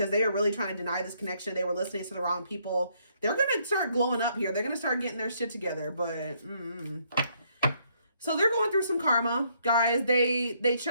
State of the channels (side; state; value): both; inverted; correlation -0.71